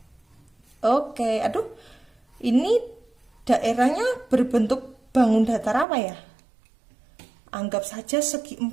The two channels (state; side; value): drops out; left; at 5.9 s